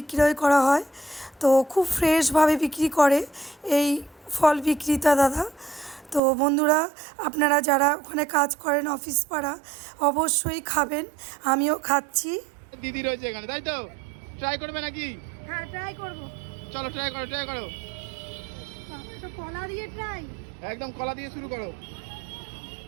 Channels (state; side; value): drops out; left; at 6.2 s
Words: করা হয়। তো খুব ফ্রেশভাবে বিক্রি করে এই ফল বিক্রেতা দাদা। তো বন্ধুরা, আপনারা যারা ওখানে কাজ করেন অফিস পাড়া, অবশ্যই খাবেন। আমিও খাচ্ছি। দিদি রয়েছে এখানে, তাই তো? ট্রাই করবে নাকি? হ্যাঁ, ট্রাই করবো। চলো ট্রাই করো। তো কলা দিয়ে ট্রাই, একদম কলা দিয়ে শুরু করো।